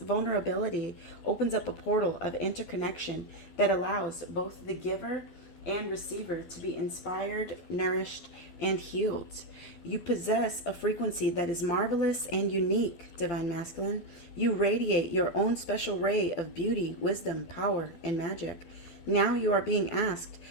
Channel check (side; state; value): right; late; 12 ms